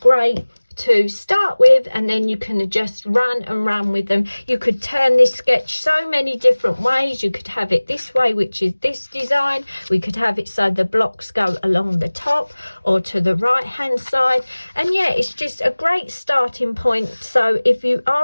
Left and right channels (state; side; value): inverted; both; correlation -1.00